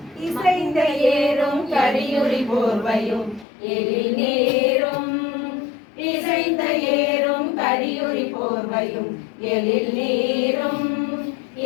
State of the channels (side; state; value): right; drops out; at 3.5 s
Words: இசைந்த ஏறும் கரியுரி போர்வையும் எழில் நேரும், இசைந்த ஏறும் கரியுரி போர்வையும் எழில் நீரும்,